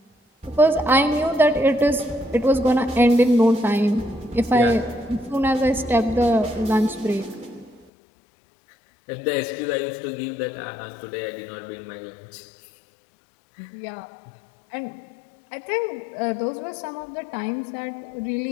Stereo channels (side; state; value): right; drops out; at 7.9 s